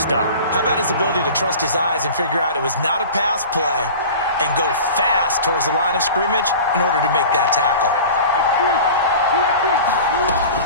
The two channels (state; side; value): inverted; both; correlation -0.38